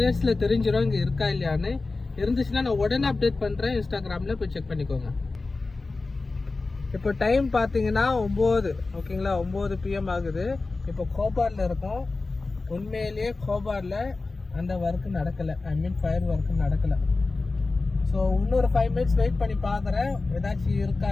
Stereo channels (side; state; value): right; quieter; 3.6 dB